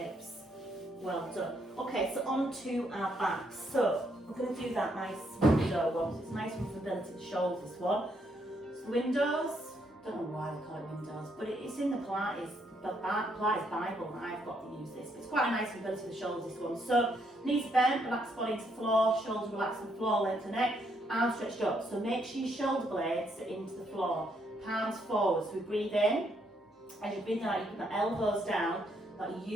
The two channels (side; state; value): both; normal; correlation 0.74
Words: Well done. Okay, so on to our backs. So we're going to do that nice window one. So it's a nice one for ability to shoulders, this one. So windows, don't know why they call it windows, but it's in the Pilates Bible that I've got to use this. But it's quite a nice ability for the shoulders, this one. So knees bent, relax body into the floor, shoulders relax on the floor, length the neck, arms stretched up. So make sure your shoulder blades are into the floor, palms forward. So we breathe in. As you breathe out, you put the elbows down, that